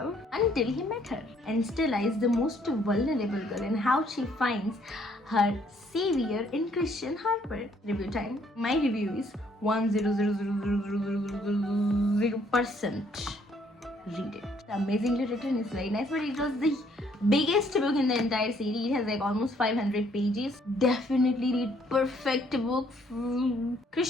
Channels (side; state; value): both; normal; correlation 0.66